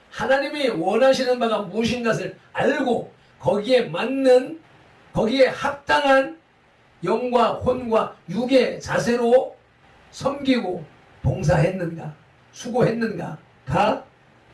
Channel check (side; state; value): both; identical; correlation 1.00